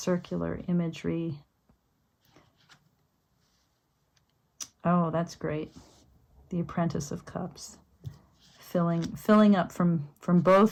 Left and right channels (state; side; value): identical; both; correlation 1.00